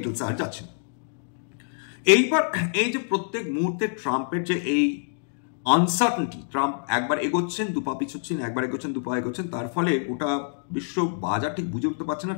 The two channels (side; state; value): right; silent; digital silence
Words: আর যাচ্ছে। এইবার এই যে প্রত্যেক মুহূর্তে ট্রাম্পের যে এই আনসার্টেনটি, ট্রাম্প একবার এগোচ্ছেন দুপা পিছোচ্ছেন, একবার এগোচ্ছেন দুপা এগোচ্ছেন, তার ফলে গোটা বিশ্ব বাজার ঠিক বুঝে উঠতে পারছে না